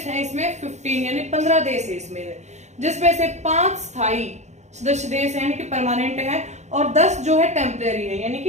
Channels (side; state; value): left; late; 0.33 ms